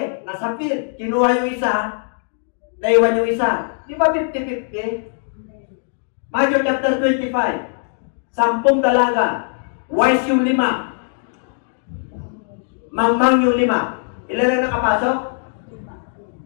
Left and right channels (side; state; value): right; silent; digital silence